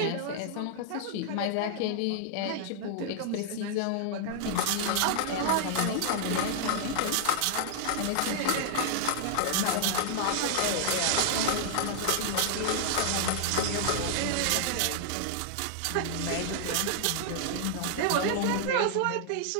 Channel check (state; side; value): different; both; correlation -0.01